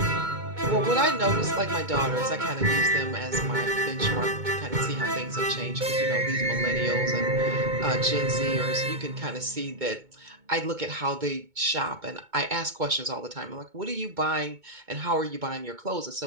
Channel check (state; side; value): late; left; 2.2 ms